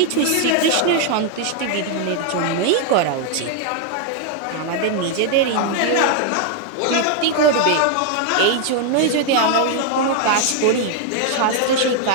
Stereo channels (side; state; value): both; different; correlation 0.00